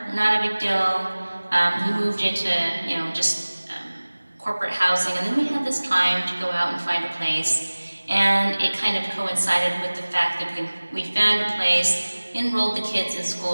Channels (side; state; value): both; inverted; correlation -1.00